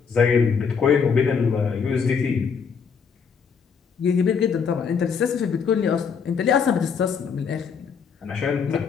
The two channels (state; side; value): quieter; right; 6.2 dB